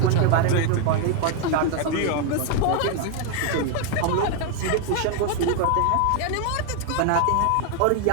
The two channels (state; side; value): different; both; correlation 0.01